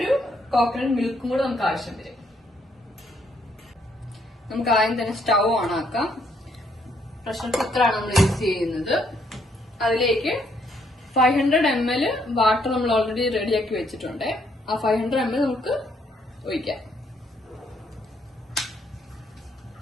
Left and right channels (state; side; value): normal; both; correlation 0.71